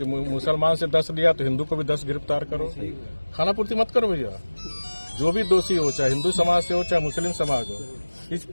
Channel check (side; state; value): both; inverted; correlation -1.00